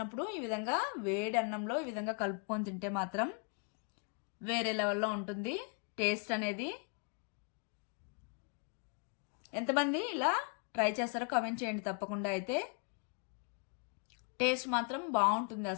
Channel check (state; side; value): quieter; right; 38.3 dB